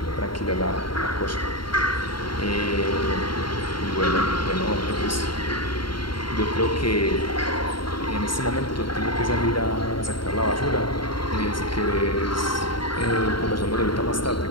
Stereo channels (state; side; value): late; right; 0.73 ms